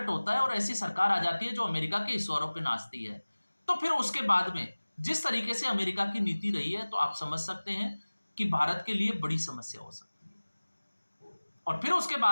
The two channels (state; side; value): inverted; both; correlation -1.00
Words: होता है और ऐसी सरकार आ जाती है जो अमेरिका के इशारों पे नाचती है, तो फिर उसके बाद में जिस तरीके से अमेरिका की नीति रही है तो आप समझ सकते हैं कि भारत के लिए बड़ी समस्या हो सकती है। और फिर उसके